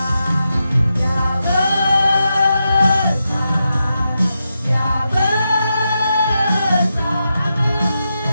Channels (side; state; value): both; inverted; correlation -0.87